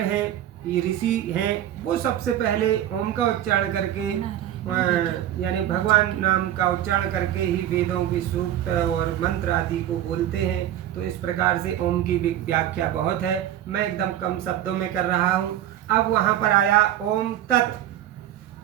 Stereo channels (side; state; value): left; quieter; 11.9 dB